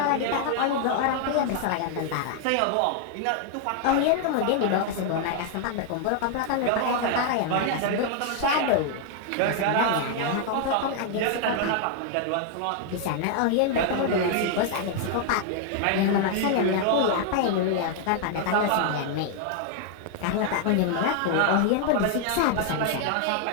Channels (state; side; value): different; both; correlation 0.00